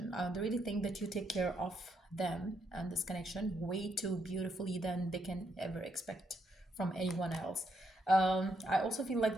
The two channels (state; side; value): normal; both; correlation 0.77